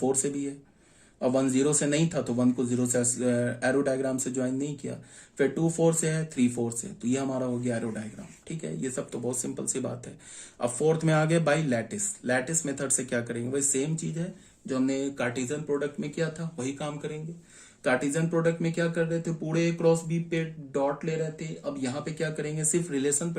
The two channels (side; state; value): both; identical; correlation 1.00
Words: से भी है, और 1 0 से नहीं था, तो 1 को 0 से एरो डायग्राम से ज्वाइन नहीं किया। फिर 2 4 से है, 3 4 से, तो ये हमारा हो गया एरो डायग्राम। ठीक है, ये सब तो बहुत सिंपल सी बात है। अब फोर्थ में आ गए बाई लैटिस। लैटिस मेथड से क्या करेंगे? वही सेम चीज है जो हमने कार्टेशियन प्रोडक्ट में किया था, वही काम करेंगे। कार्टेशियन प्रोडक्ट में क्या कर रहे थे? पूरे ए क्रॉस बी पे डॉट ले रहे थे। अब यहाँ पे क्या करेंगे? सिर्फ रिलेशन पे